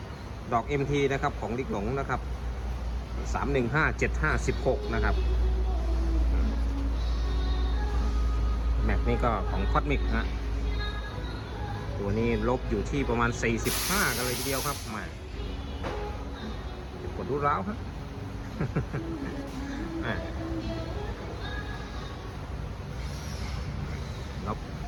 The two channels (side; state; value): both; identical; correlation 1.00